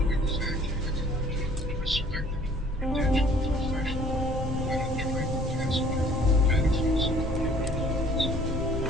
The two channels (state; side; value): normal; both; correlation 0.55